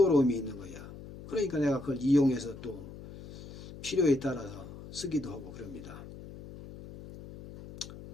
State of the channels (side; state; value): left; noise; hum, 14 dB below the sound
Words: 있는 거야. 그러니까 내가 그걸 이용해서 또 필요에 따라서 쓰기도 하고 그럽니다.